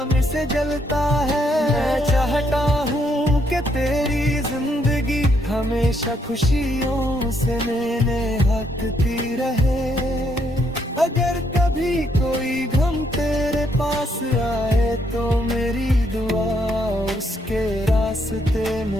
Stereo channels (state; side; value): normal; both; correlation 0.73